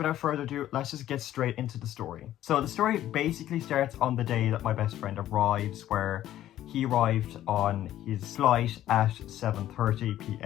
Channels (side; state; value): right; quieter; 12.8 dB